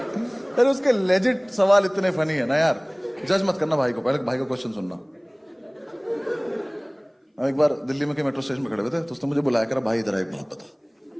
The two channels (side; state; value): both; identical; correlation 1.00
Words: अरे उसके लेजिट सवाल इतने फनी है ना यार। जज मत करना भाई को, पहले भाई का क्वेश्चन सुनना। हम एक बार दिल्ली में के मेट्रो स्टेशन में खड़े हुए थे, तो उसने मुझे बुलाया कर, भाई इधर एक बात बता।